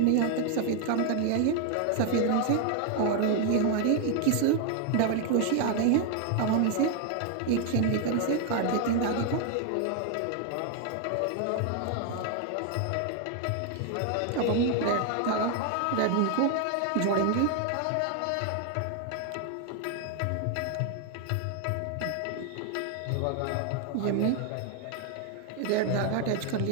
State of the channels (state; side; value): different; both; correlation 0.00